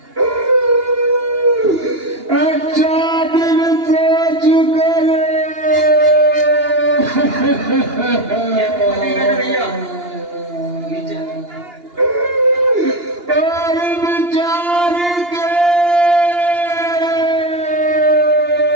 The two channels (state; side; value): late; left; 2.8 ms